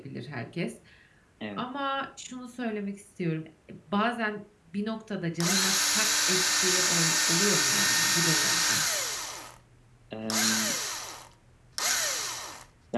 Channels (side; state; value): both; identical; correlation 1.00